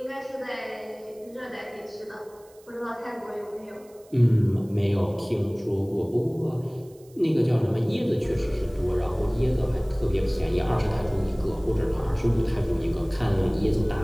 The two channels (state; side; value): noise; right; hiss, 28 dB below the sound